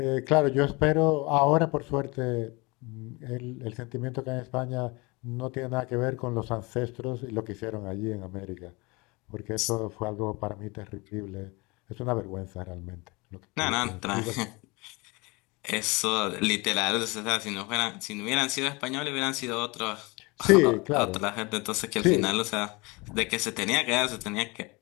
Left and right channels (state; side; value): quieter; right; 26.1 dB